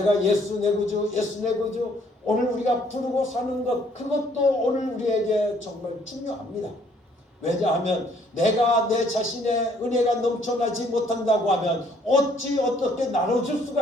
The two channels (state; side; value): normal; both; correlation 0.64